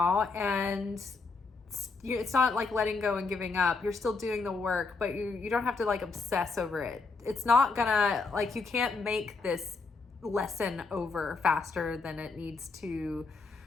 and it's not like letting go and giving up. You're still doing the work, but you don't have to like obsess over it. It's not gonna, like, you can't make this lesson over faster than it needs to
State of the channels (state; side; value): quieter; right; 4.1 dB